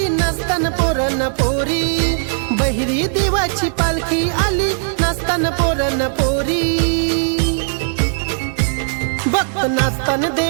नसताना पोरण पोरी. बहिरी देवाची पालखी आली नसताना पोरण पोरी. भक्त नाचताना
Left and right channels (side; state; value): left; silent; digital silence